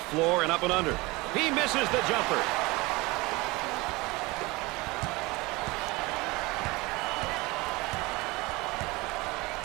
floor and up and under. He misses the jumper.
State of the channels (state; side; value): quieter; left; 23.1 dB